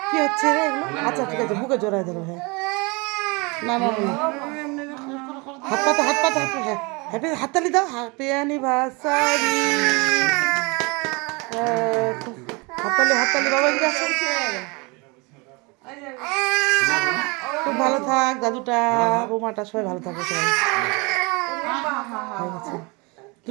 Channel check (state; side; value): quieter; left; 28.1 dB